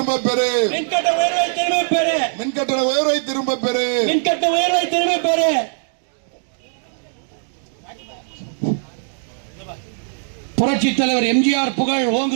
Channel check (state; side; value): silent; left; digital silence